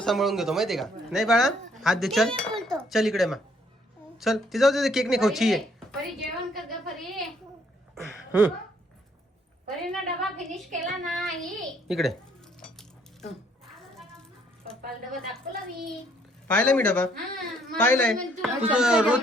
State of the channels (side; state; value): both; normal; correlation 0.66